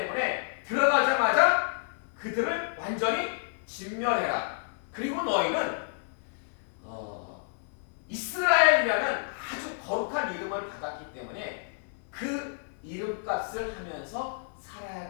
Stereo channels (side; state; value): right; silent; 58 dB below the other